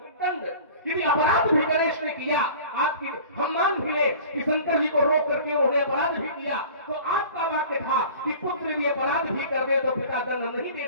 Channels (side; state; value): both; inverted; correlation -0.42